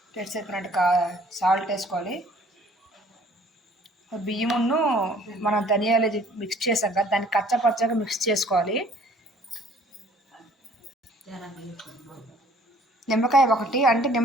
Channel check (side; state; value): both; normal; correlation 0.56